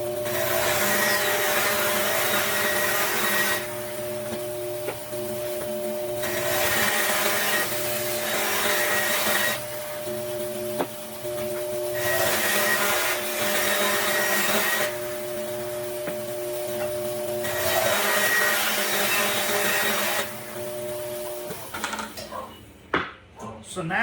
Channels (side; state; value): both; identical; correlation 1.00